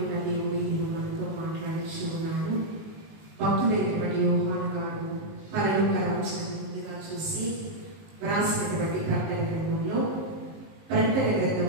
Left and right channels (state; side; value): late; left; 19 ms